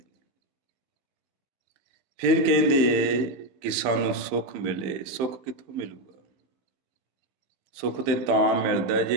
ਫਿਰ ਕਹਿੰਦੇ ਕਿ ਸਾਨੂੰ ਸੁੱਖ ਮਿਲੇ। ਸੁੱਖ ਕਿੱਥੋਂ ਮਿਲੂਗਾ? ਸੁੱਖ ਤੇ ਤਾਂ ਮਿਲਦਾ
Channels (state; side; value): late; left; 15 ms